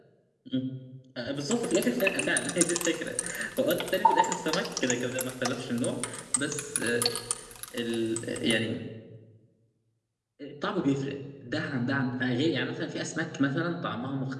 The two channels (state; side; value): identical; both; correlation 1.00